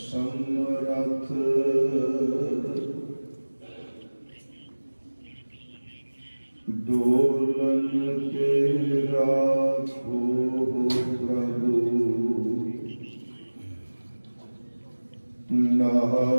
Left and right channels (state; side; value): inverted; both; correlation -1.00